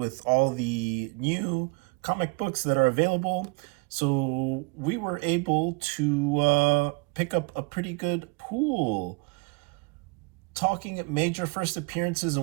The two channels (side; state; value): left; quieter; 29.7 dB